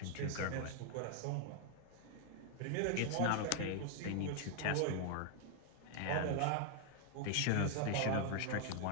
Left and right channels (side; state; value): both; different; correlation 0.00